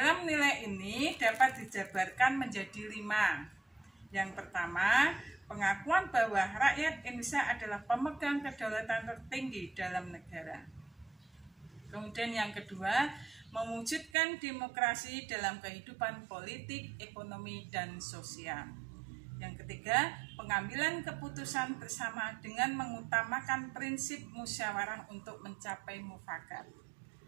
nilai ini dapat dijabarkan menjadi 5. Yang pertama, pengakuan bahwa rakyat Indonesia adalah pemegang kedaulatan tertinggi dalam negara. Kemudian yang kedua, mewujudkan demokrasi dalam kehidupan politik, ekonomi, dan sosial. Yang ketiga, pengambilan keputusan bersama dengan mengutamakan prinsip musyawarah untuk mencapai mufakat.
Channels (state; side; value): drops out; left; at 14.1 s